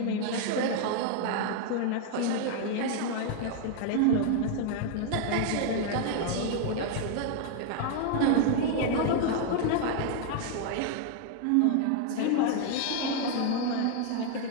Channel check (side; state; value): both; different; correlation 0.00